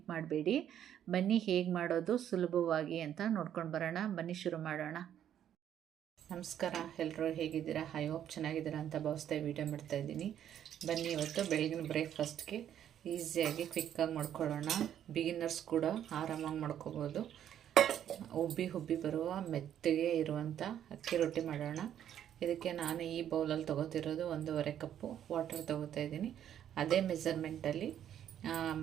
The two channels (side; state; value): left; quieter; 10.2 dB